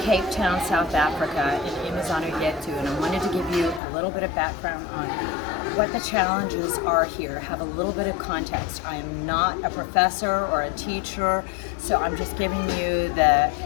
Town, South Africa, in Imizano Yetu, and I wanted to give you a little bit of background on what the challenges are here, have a little bit of context. I am not a professor or a teacher, so I'm just giving you the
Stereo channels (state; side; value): drops out; right; at 3.8 s